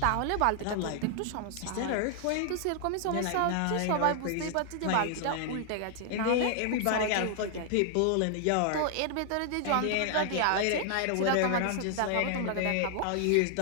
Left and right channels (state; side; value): different; both; correlation 0.00